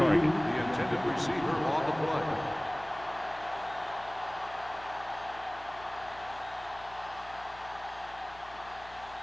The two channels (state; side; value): noise; left; hum, 21 dB below the sound